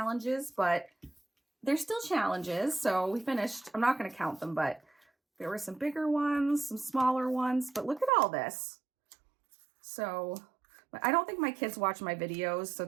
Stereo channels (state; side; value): drops out; left; at 8.1 s